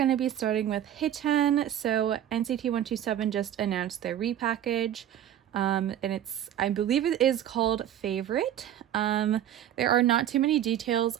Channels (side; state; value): left; quieter; 10.9 dB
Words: to be starting with Hichan. So NCT 127 just announced their repackage, and I believe it is called Favorite. There are not too many details.